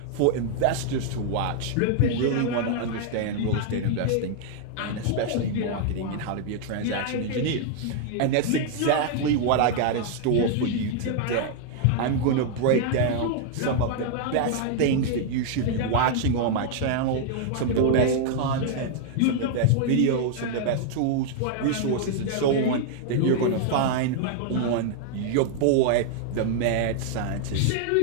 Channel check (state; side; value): different; both; correlation 0.00